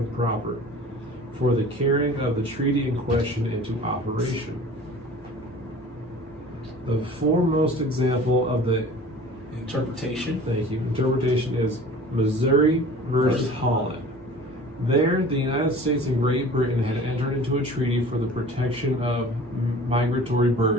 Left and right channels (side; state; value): both; normal; correlation 0.43